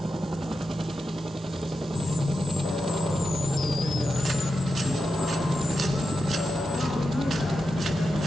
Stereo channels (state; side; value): normal; both; correlation 0.89